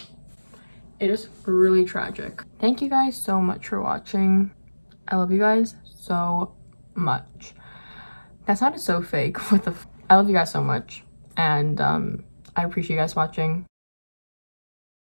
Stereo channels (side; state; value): both; inverted; correlation -1.00